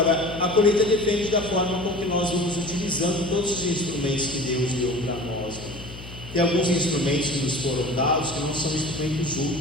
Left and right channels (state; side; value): noise; left; hum, 14 dB below the sound